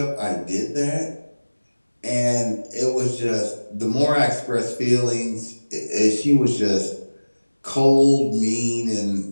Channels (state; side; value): inverted; both; correlation -1.00